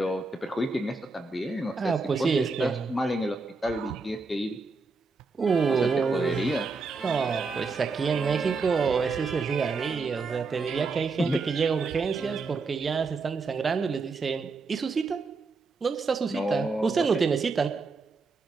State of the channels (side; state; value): left; quieter; 4.1 dB